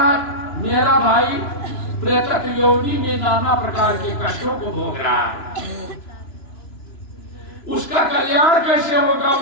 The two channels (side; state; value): right; late; 2.9 ms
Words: मेरा भाई प्रेतत्व योनि में नाना प्रकार के कष्टों को भोग रहा है, उसका कल्याण कैसे होगा।